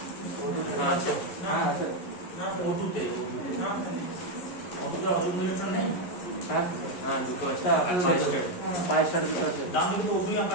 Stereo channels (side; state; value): right; late; 11 ms